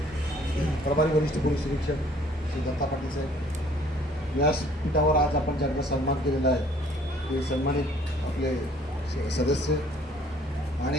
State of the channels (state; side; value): normal; both; correlation 0.58